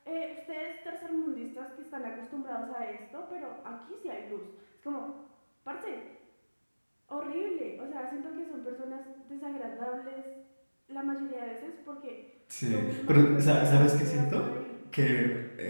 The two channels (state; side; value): inverted; both; correlation -1.00